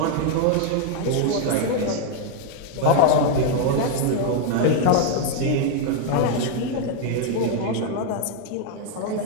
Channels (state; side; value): different; both; correlation 0.00